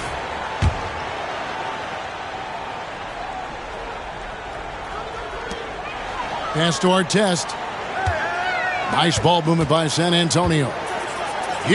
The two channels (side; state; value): both; identical; correlation 1.00